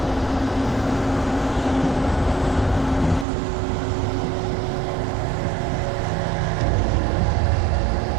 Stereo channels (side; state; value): left; drops out; at 3.2 s